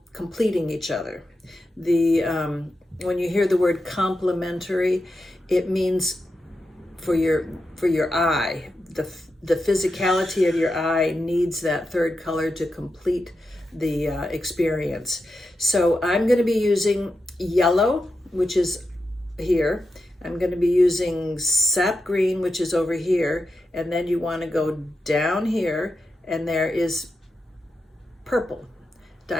completing each other. When you hear the word complementary, it means for your eye, the physicality of your eye needs that 3rd color to complete the experience. So I'm going to be using yellow, which is here. I'm going to be using sap green, which is over here, and then you want to go down here, and there is purple.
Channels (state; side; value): normal; both; correlation 0.88